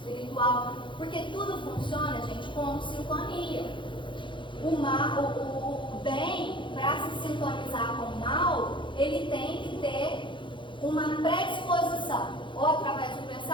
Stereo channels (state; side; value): late; right; 0.23 ms